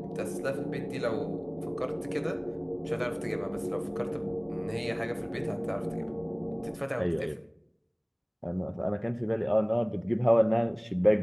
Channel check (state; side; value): identical; both; correlation 1.00